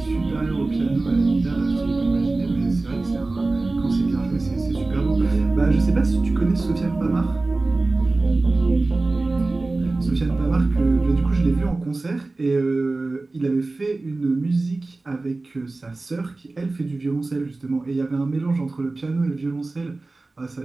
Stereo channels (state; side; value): quieter; left; 3.3 dB